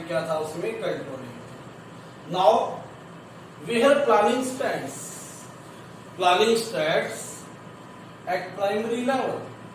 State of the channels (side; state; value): both; identical; correlation 1.00